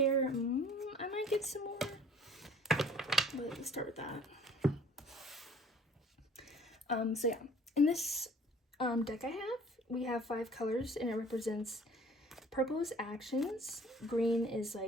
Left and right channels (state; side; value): normal; both; correlation 0.52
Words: I might get some more, but let's start with that. So yeah, in this deck we have 5 colors, and it represents purple is actions, green is